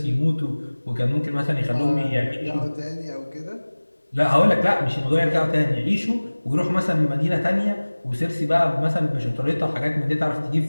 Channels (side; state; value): both; inverted; correlation -1.00